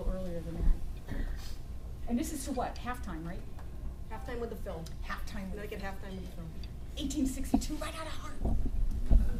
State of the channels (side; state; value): both; identical; correlation 1.00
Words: earlier than that. And this is to what? Halftime, right? Halftime with the film. Halftime. Connecticut halftime with the film. 1862, right out of Hartford.